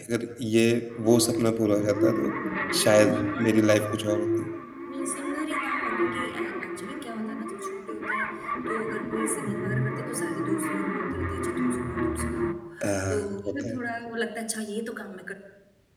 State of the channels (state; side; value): identical; both; correlation 1.00